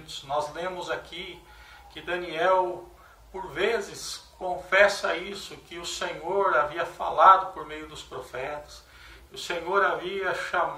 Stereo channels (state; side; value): identical; both; correlation 1.00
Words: Nós lemos aqui que Daniel, por vezes, confessa isso, que o Senhor havia falado por meio dos profetas, que o Senhor havia